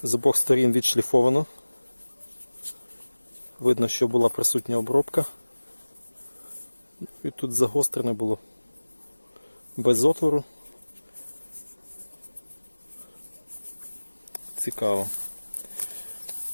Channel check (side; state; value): both; inverted; correlation -1.00